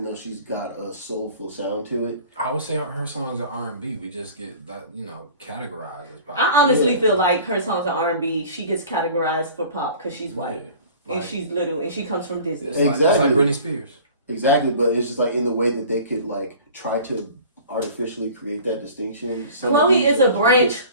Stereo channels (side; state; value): both; inverted; correlation -0.45